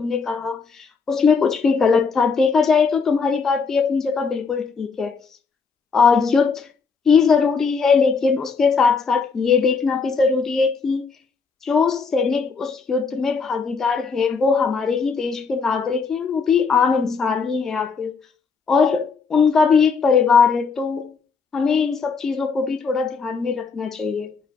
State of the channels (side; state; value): right; quieter; 5.2 dB